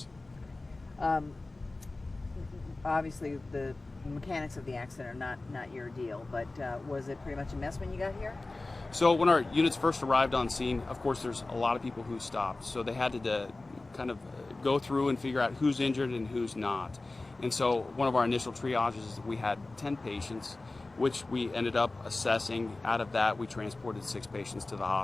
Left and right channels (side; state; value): right; quieter; 3.1 dB